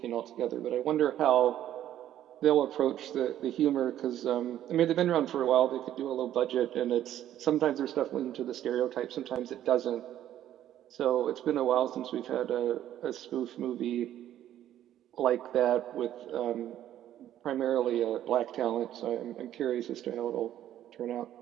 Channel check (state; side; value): quieter; left; 11.8 dB